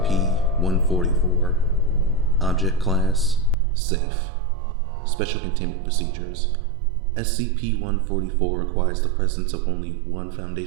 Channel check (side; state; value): left; drops out; at 3.6 s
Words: Object Class Safe. Special Containment Procedures. SCP-144 requires the presence of only one